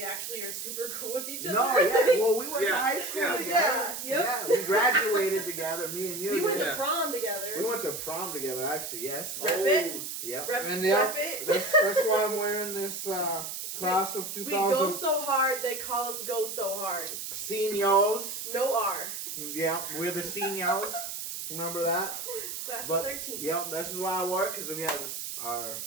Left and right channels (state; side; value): noise; right; hiss, 6 dB below the sound